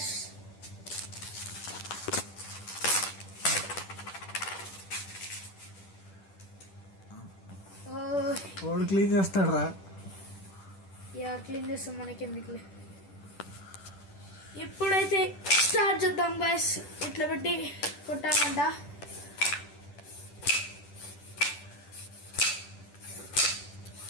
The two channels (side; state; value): right; late; 10 ms